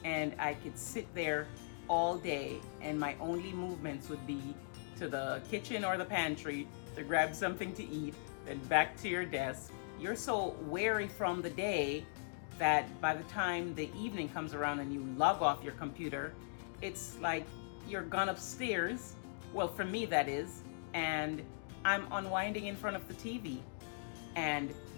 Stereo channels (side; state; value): right; silent; digital silence